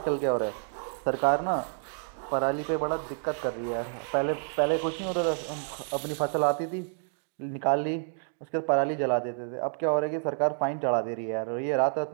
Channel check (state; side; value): silent; left; digital silence